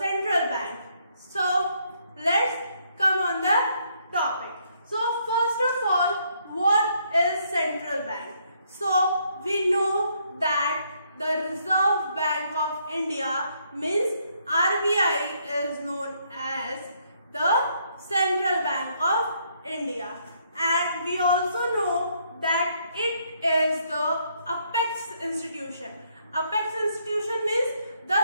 bank. So let's come on the topic. So first of all, what is central bank? So we know that the Reserve Bank of India means RBI is known as the Central Bank of India, and we also know that it is the apex institution. Apex institution means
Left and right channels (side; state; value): both; inverted; correlation -0.71